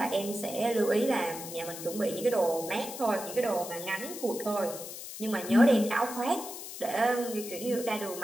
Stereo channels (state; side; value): noise; left; hiss, 10 dB below the sound